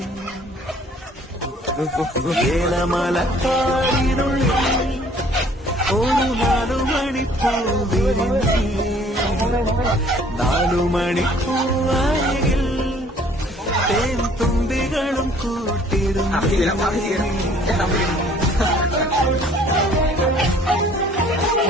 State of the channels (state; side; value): normal; both; correlation 0.56